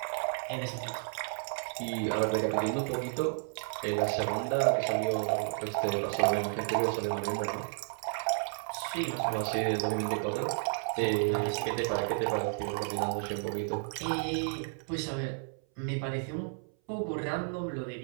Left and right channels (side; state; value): left; silent; 56 dB below the other